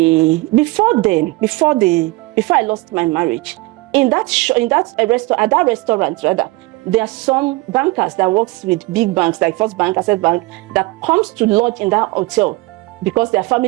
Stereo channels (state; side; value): quieter; left; 22.2 dB